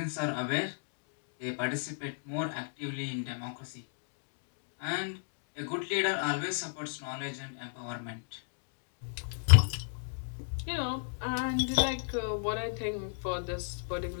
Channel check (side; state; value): right; silent; digital silence